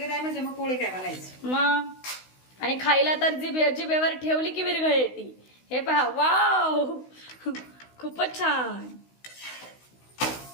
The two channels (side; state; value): right; late; 16 ms